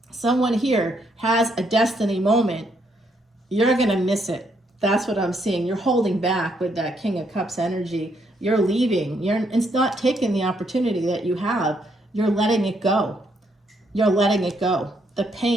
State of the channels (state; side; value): normal; both; correlation 0.73